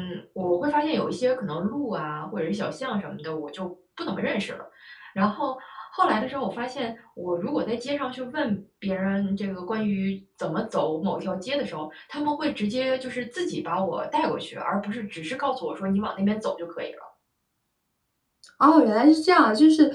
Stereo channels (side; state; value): both; identical; correlation 1.00